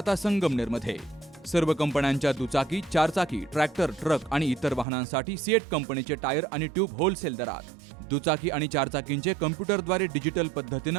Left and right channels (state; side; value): drops out; left; at 4.9 s